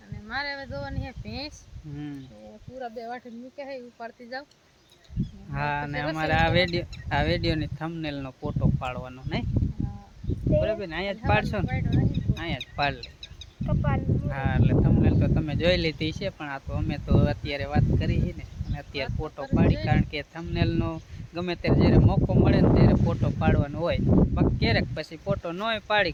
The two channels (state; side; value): identical; both; correlation 1.00